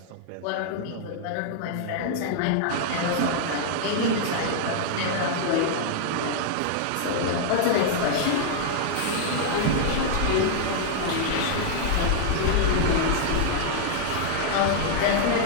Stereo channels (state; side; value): different; both; correlation -0.01